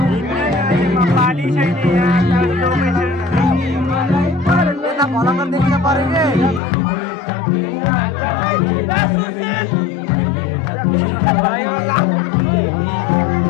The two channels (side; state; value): right; drops out; at 6.6 s